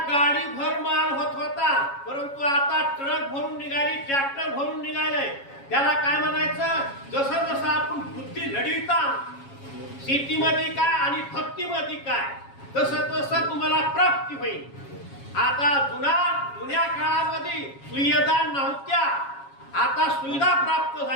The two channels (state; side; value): late; right; 7.3 ms